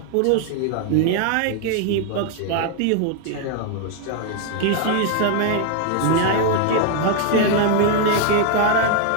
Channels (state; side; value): different; both; correlation 0.00